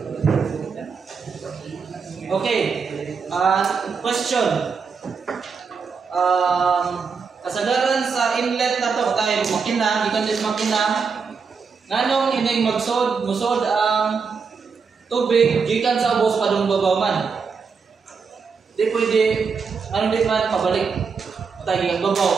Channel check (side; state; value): left; quieter; 5.5 dB